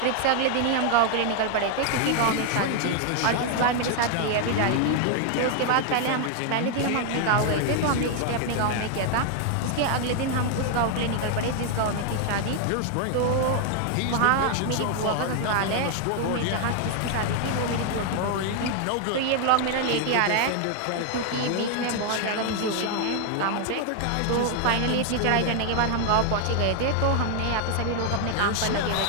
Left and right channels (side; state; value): both; different; correlation 0.00